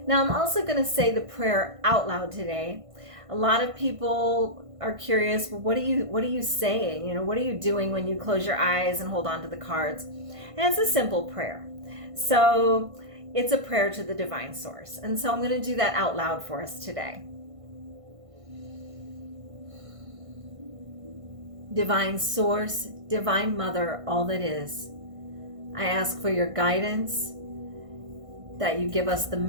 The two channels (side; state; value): left; late; 1.5 ms